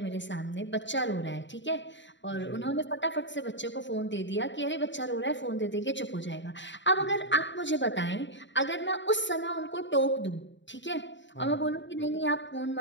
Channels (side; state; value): right; late; 0.53 ms